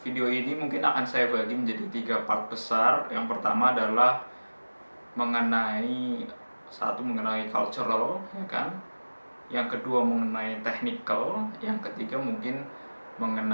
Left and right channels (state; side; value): inverted; both; correlation -1.00